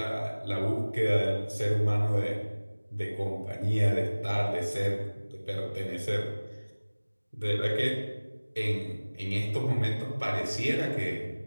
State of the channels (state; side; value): inverted; both; correlation -1.00